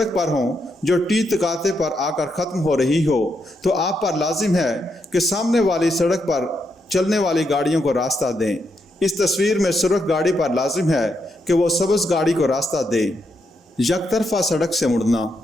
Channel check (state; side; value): normal; both; correlation 0.80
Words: पर हों जो टी तकाते पर आकर ख़त्म हो रही हो, तो आप पर लाजिम है कि सामने वाली सड़क पर चलने वाली गाड़ियों को रास्ता दें। इस तस्वीर में सुरख गाड़ी पर लाजिम है कि वो सब्ज़ गाड़ी को रास्ता दे। यकतरफा सड़क से मुड़ना।